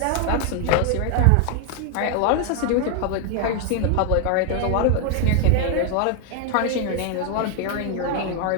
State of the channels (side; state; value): both; different; correlation 0.00